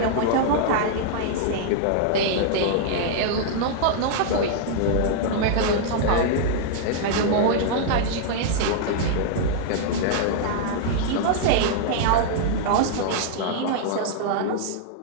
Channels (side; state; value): both; different; correlation -0.01